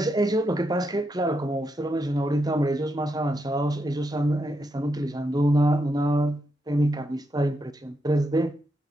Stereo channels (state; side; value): normal; both; correlation 0.82